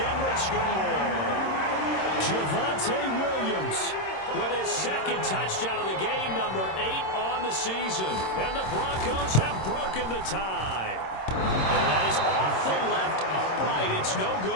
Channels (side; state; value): right; late; 26 ms